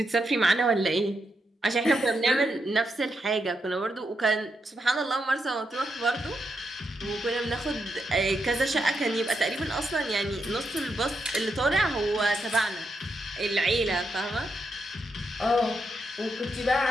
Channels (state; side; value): normal; both; correlation 0.83